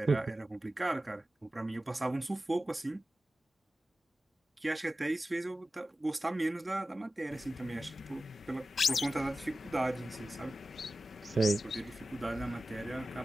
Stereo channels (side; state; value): both; normal; correlation 0.94